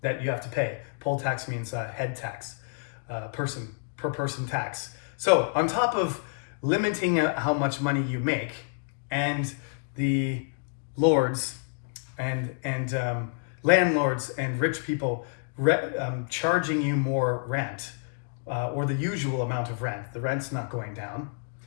that you have to pay. Poll tax means head tax, per person tax. So on top of limiting how much money you make, and the lords and landlords and rich people charging you more rent, or the usual amount of rent. The rent's not going down.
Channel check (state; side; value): silent; right; digital silence